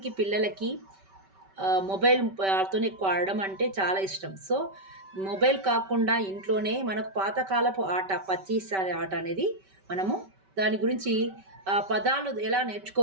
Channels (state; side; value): late; left; 5.2 ms